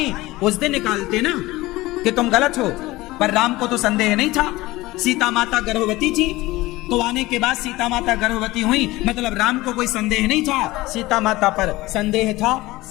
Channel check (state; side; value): quieter; right; 19.2 dB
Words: उस दिन निकालते ना कि तुम गलत हो। पर राम को तो संदेह नहीं था। सीता माता गर्भवती थी, तो आने के बाद सीता माता गर्भवती हुई, मतलब राम को कोई संदेह नहीं था। सीता माता पर संदेह था